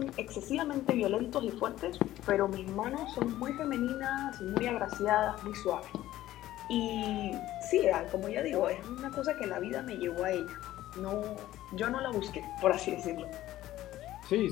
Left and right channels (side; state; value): right; quieter; 14.5 dB